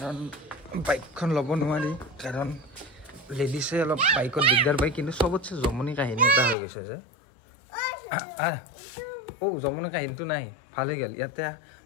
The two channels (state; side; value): drops out; right; at 6.6 s